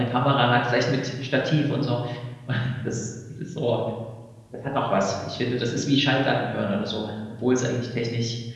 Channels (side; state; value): both; identical; correlation 1.00